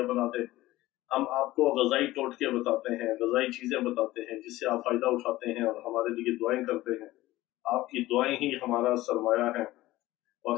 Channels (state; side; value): quieter; right; 17.1 dB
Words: बना दे। हम आपको गज़ाई टोटके बताते हैं, गज़ाई चीजें बताते हैं जिससे आप फायदा उठाते हैं और हमारे लिए दुआएं करते हैं। आपकी दुआएं ही हमारा सरमाया है और